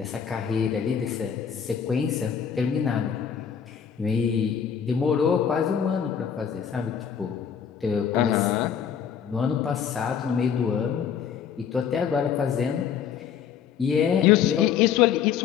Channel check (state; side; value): quieter; right; 7.9 dB